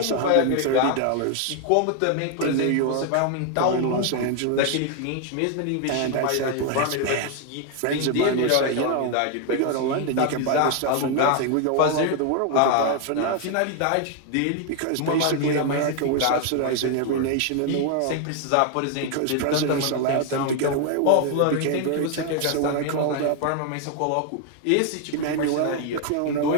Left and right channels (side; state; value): both; different; correlation 0.00